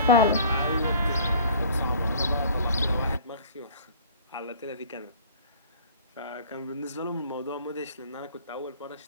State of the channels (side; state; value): both; inverted; correlation -0.48